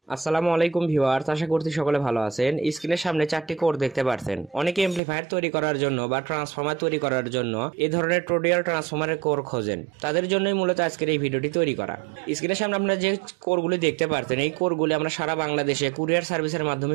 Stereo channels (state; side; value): drops out; left; at 5.0 s